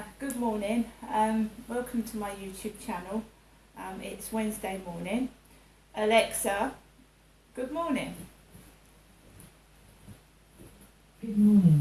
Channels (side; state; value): both; identical; correlation 1.00